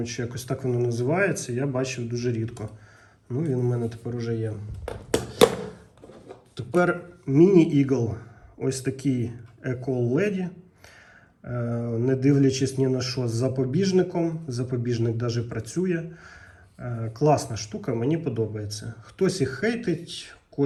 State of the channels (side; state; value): both; identical; correlation 1.00